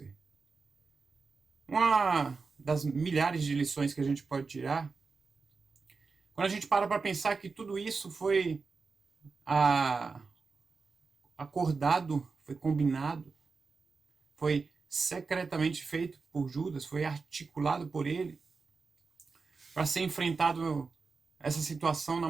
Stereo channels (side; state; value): left; quieter; 4.5 dB